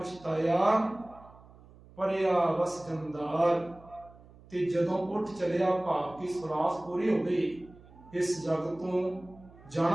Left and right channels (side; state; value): right; noise; hum, 23 dB below the sound